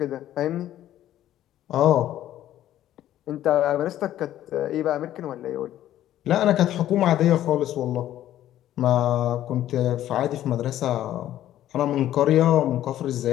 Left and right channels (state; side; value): quieter; right; 12.6 dB